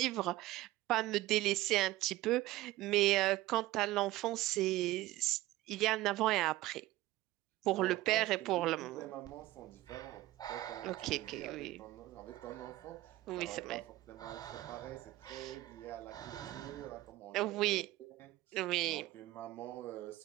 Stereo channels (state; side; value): quieter; left; 17.2 dB